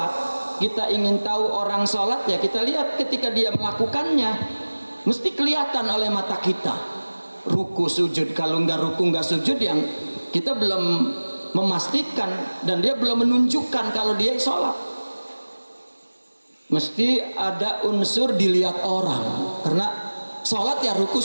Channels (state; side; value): inverted; both; correlation -1.00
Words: kita ingin tahu orang sholat, ya kita lihat ketika dia melakukannya, mesti kelihatan oleh mata kita. Ruku sujud, kalau nggak ruku nggak sujud, yang kita belum memastikan dan dia belum menunjukkan kalau dia sholat. Mesti ada unsur dilihat orang, karena sholat ya ruku